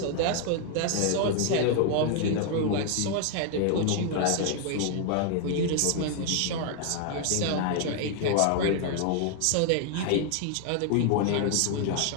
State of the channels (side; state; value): both; different; correlation 0.00